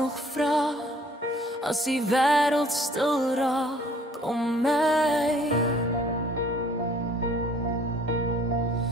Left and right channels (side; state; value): both; normal; correlation 0.56